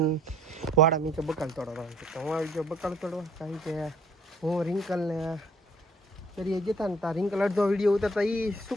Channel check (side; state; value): both; normal; correlation 0.58